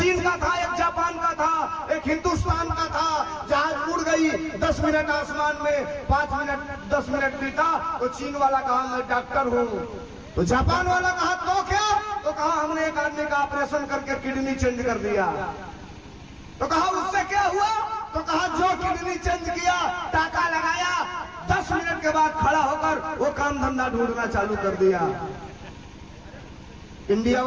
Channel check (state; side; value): identical; both; correlation 1.00